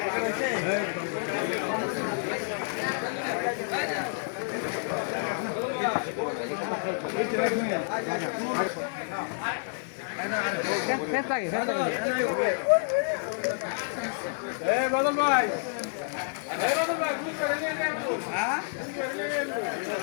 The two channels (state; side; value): silent; right; 57 dB below the other